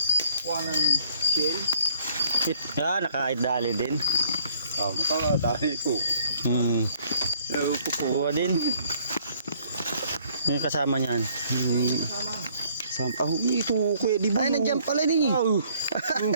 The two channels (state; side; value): inverted; both; correlation -0.62